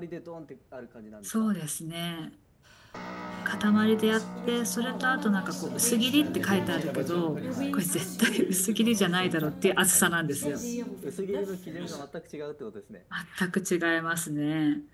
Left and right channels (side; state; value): both; identical; correlation 1.00